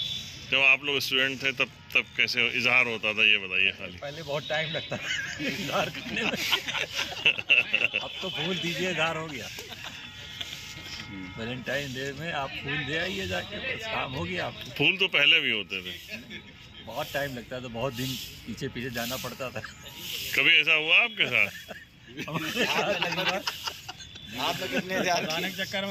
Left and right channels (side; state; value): both; identical; correlation 1.00